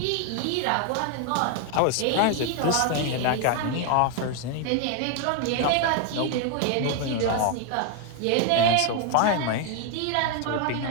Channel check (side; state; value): both; different; correlation 0.01